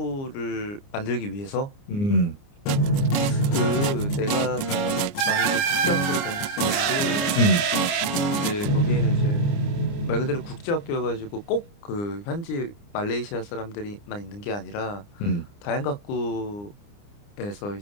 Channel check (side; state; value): right; late; 29 ms